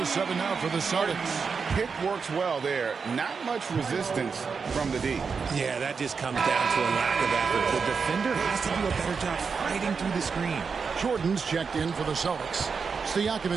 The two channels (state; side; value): quieter; left; 5.5 dB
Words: 7 now for the Celtics. Pick works well there. Not much resistance from the D. Yeah, that just comes down to a lack of effort. The defender has to do a better job fighting through the screen. Jordan's checked in for the Celtics.